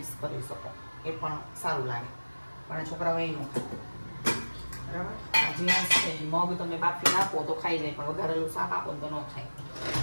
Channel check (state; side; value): inverted; both; correlation -1.00